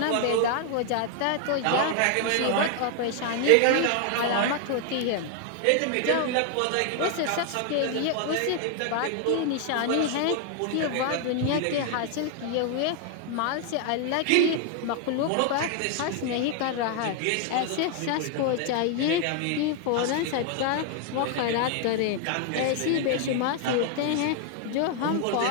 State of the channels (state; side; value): different; both; correlation 0.00